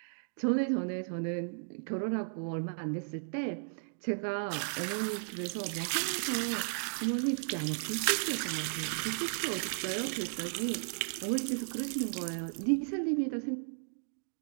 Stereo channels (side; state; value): left; silent; digital silence